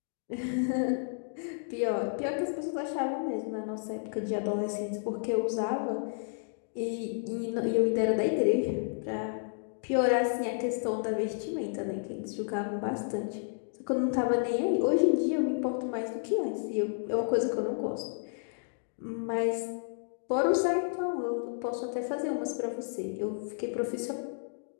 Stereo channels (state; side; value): silent; right; digital silence